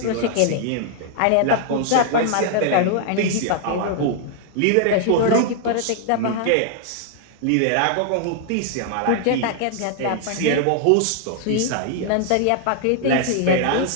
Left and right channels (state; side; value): different; both; correlation 0.00